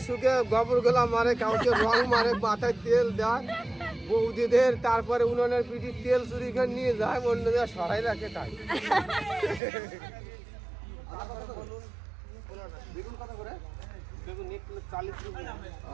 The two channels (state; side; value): drops out; left; at 9.6 s